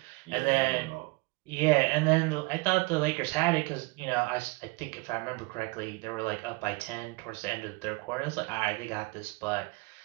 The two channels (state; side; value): quieter; left; 25.7 dB